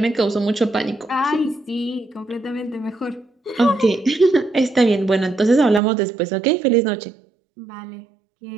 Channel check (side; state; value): left; drops out; at 5.8 s